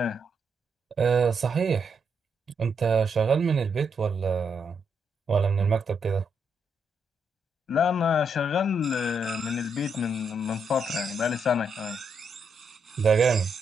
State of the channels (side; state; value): both; normal; correlation 0.78